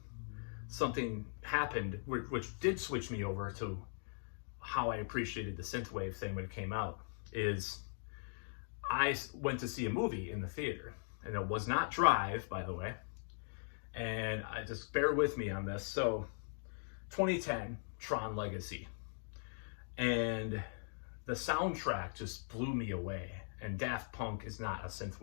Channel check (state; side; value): silent; right; digital silence